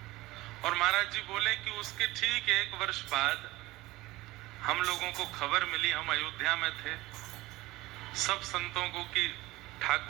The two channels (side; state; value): left; quieter; 19.2 dB